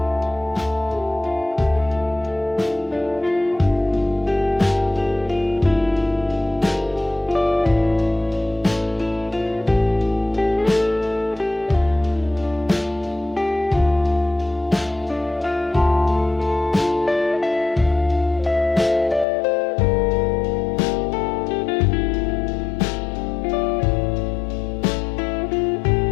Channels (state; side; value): drops out; right; at 19.2 s